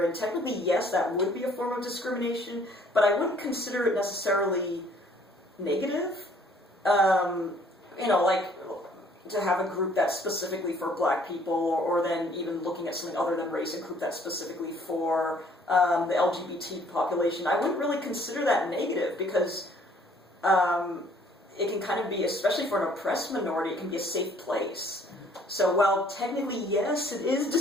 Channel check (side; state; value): both; normal; correlation 0.60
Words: in, technically, yes, that would be a form of discrimination, but I wouldn't consider it necessarily negative. You know, like, to have a group that's specifically for black people, or then even looking at something other than race, a group that's specifically for the LGBT population, I wouldn't really consider that negative, because it can kind of be, especially for an oppressed minority, it can be a safe place. So while technically, yes, it is